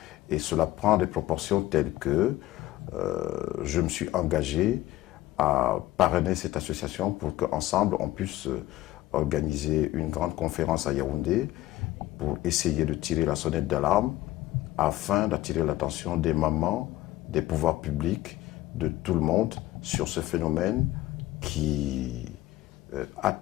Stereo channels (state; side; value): quieter; right; 15.8 dB